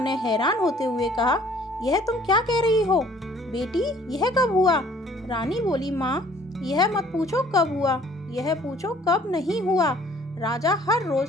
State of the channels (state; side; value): normal; both; correlation 0.56